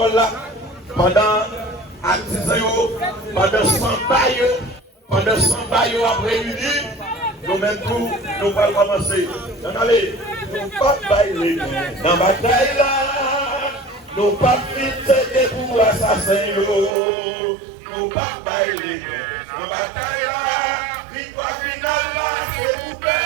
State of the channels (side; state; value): left; drops out; at 16.9 s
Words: là pendant pendant 100 bails, pendant 100 bails après réunis, nous-mêmes tout, nous allons commencer. Donc allez, nous pas bailler dans la bataille là, nous pas fixer pour assassins, nous pas bailler dans la bataille là, victoire finale là, c'est vous